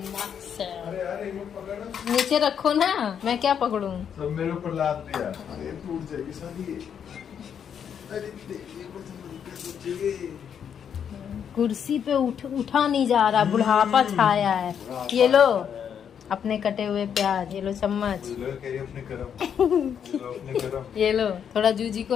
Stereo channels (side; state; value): right; quieter; 8.1 dB